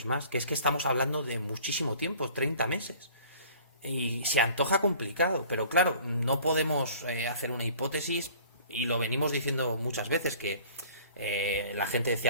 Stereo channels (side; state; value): both; inverted; correlation -0.50